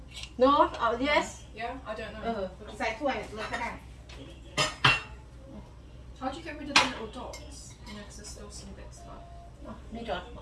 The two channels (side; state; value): both; identical; correlation 1.00